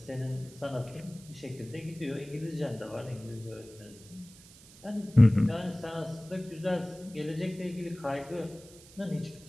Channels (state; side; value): noise; right; hiss, 21 dB below the sound